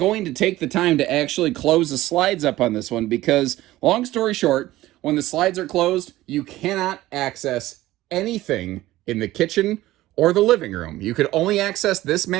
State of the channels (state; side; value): quieter; left; 16.3 dB